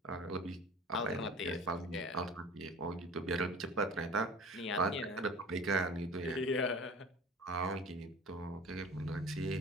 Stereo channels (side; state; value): both; normal; correlation 0.41